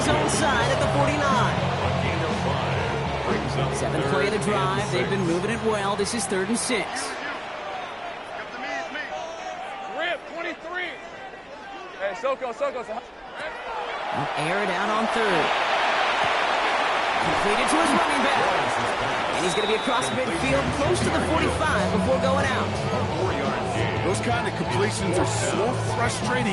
own side at the 49. 7th play of the drive. They've been moving it well. This is 3rd and 6. Rip, 23. Hey, Soko. Air it out on 3rd. Completed to his running back. And he's going to be across midfield close to the 45 before going out. Those kind of completions are so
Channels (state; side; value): identical; both; correlation 1.00